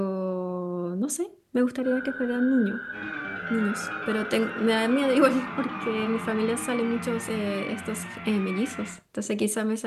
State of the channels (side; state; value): both; identical; correlation 1.00